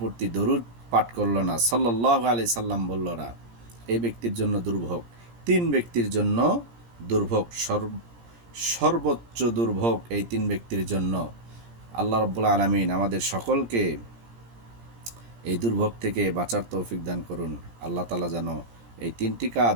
প্রতি দরুদ পাঠ করল না, সাল্লাল্লাহু আলাইহি সাল্লাম বলল না, এই ব্যক্তির জন্য দুর্ভোগ। তিন ব্যক্তির জন্য দুর্ভোগ, সর্বোচ্চ দুর্ভোগ এই তিন ব্যক্তির জন্য। আল্লাহ রাব্বুল আলামিন আমাদের সকলকে এই দুর্ভোগ থেকে বাঁচার তৌফিক দান করুন। আল্লাহ তাআলা যেন এই তিনটি কাজ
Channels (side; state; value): left; late; 17 ms